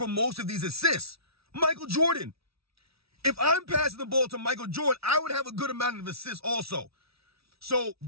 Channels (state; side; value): late; left; 0.76 ms